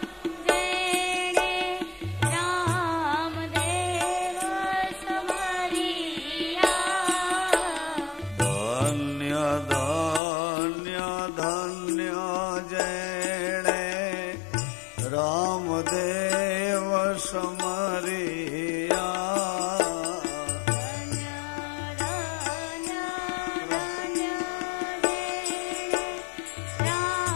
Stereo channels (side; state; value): right; drops out; at 10.2 s